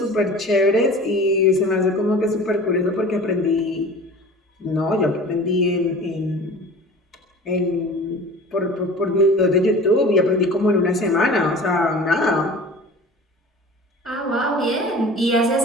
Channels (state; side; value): normal; both; correlation 0.40